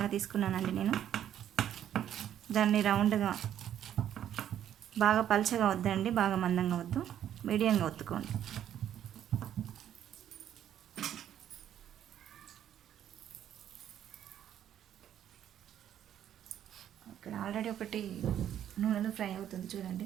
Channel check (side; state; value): left; quieter; 10.5 dB